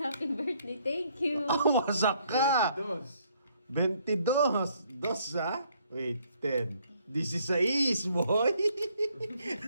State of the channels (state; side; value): inverted; both; correlation -0.67